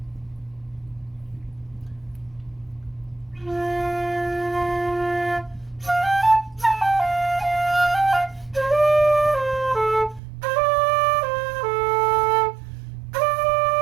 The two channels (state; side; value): drops out; left; at 10.2 s